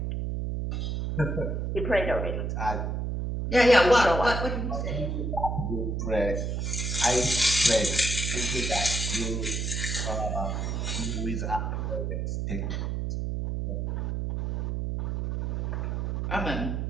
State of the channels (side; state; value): right; noise; hum, 1 dB below the sound